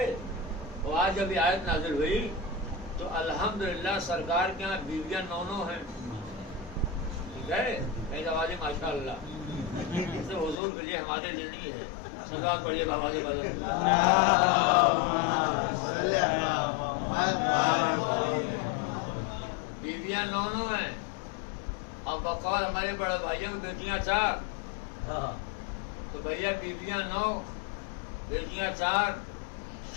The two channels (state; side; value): drops out; right; at 10.6 s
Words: تو آج جب یہ آیت نازل ہوئی تو الحمدللہ سرکار کے یہاں بیویاں 9 ہیں۔ ٹھیک ہے، کئی آوازیں ماشاء اللہ، اس سے حضور کے لیے ہمارے لیے نہیں ہے۔ صلوات پڑھیے بابا کے بدل۔ بیویاں 9 ہیں، اور بقول ہمارے بڑے بھائیوں کی بیٹیاں 4، تو بھیا بیویاں 9 بیٹیاں 4،